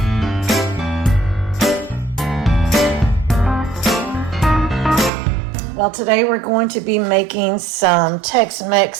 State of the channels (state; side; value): drops out; left; at 5.1 s